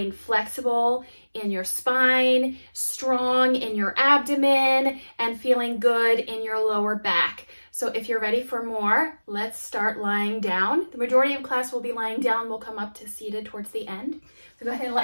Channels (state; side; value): inverted; both; correlation -1.00